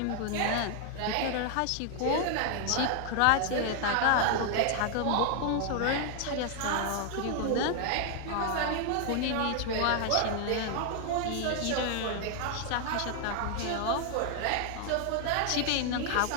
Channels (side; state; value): both; different; correlation 0.00